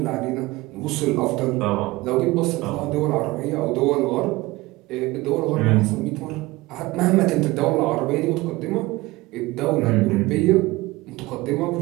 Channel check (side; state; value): left; quieter; 20.4 dB